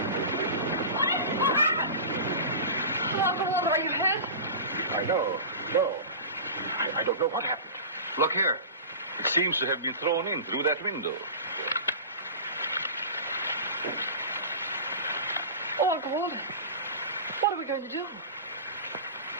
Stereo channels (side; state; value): both; inverted; correlation -0.32